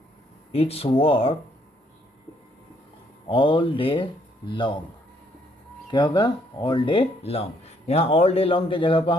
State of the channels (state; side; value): normal; both; correlation 0.69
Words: it's work all day long. क्या होगा? All day long. यहाँ ऑल डे लॉन्ग के जगह पर